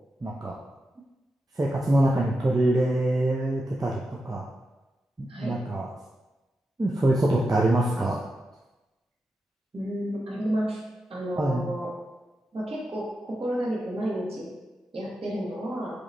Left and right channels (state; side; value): normal; both; correlation 0.88